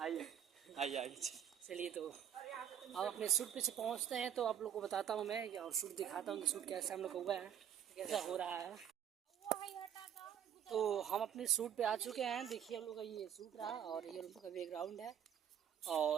आइए चलिए तो अब अपने शूट पे से पहुंचते हैं तो आप लोग को बताता हूँ मैं, और शूट दिखाता हूँ कि शूट कैसे हम लोग हुआ है, कैसा हो रहा है। तो हम अपने शूट पे आ चुके हैं। देखिए हम लोग का ये शूट रहा और ये हम लोग का बैकग्राउंड है।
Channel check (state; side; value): quieter; left; 9.5 dB